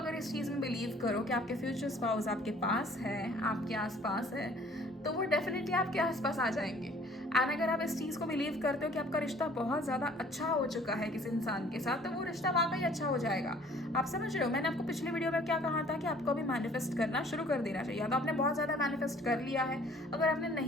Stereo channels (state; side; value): normal; both; correlation 0.55